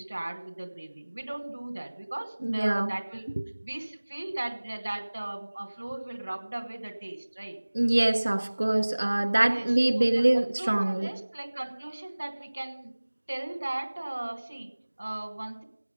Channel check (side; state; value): both; inverted; correlation -1.00